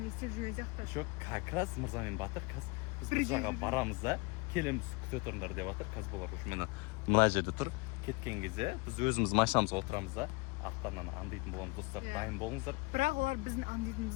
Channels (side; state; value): right; quieter; 26.9 dB